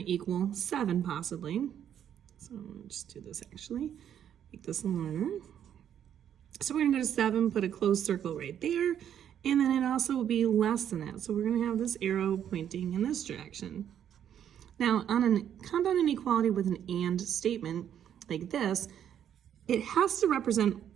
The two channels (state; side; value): quieter; left; 9.6 dB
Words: to equal 7 possibly. So I'll just do this actually, make this longer. So we're going to go to 7, put a closed circle right there, and then it also will be less than that. So we're going to have this arrow pointing in this direction. Now, on a compound inequality with an AND statement like this, it has to represent